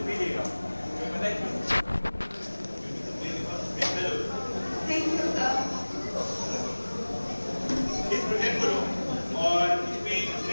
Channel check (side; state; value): both; inverted; correlation -1.00